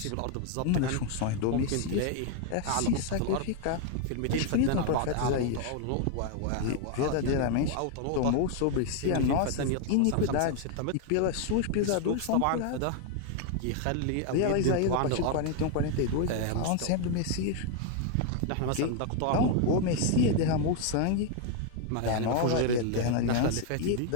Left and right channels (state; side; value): different; both; correlation 0.00